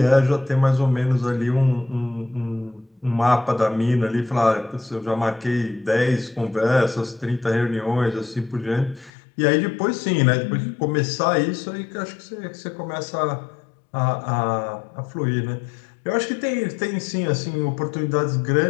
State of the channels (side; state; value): right; drops out; at 9.1 s